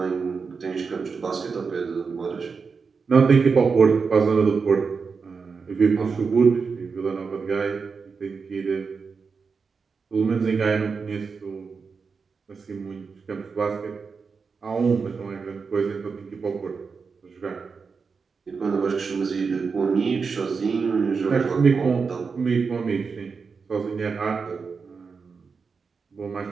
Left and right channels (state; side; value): quieter; left; 5.2 dB